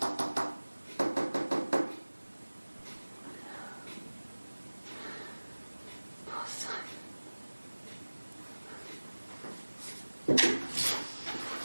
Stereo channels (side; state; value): both; inverted; correlation -1.00